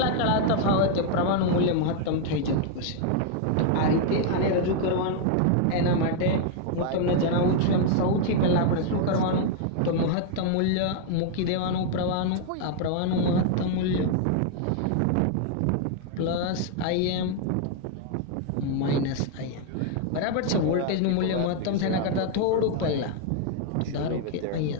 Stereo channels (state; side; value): different; both; correlation 0.00